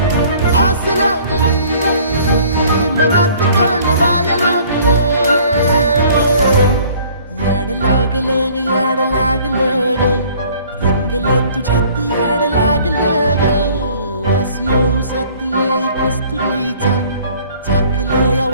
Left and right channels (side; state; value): both; inverted; correlation -0.54